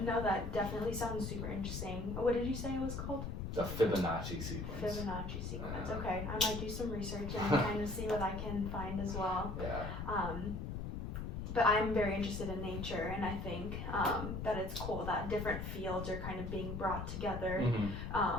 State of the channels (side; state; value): left; noise; rumble, 5 dB below the sound